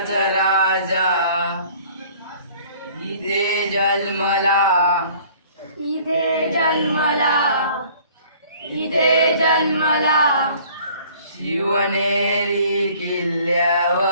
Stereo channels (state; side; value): inverted; both; correlation -0.53